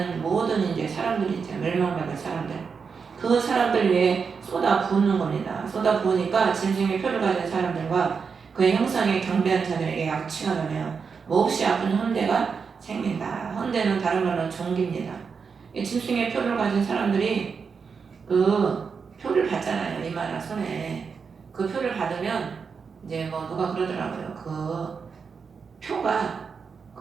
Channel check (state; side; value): quieter; left; 5.7 dB